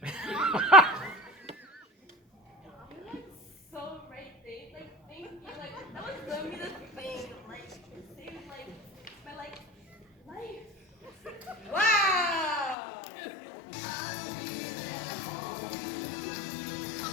You're like so right, Dave. Like, thank you. Like, that was literally the thing. Like, it saved like my life. Wow!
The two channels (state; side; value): drops out; right; at 12.8 s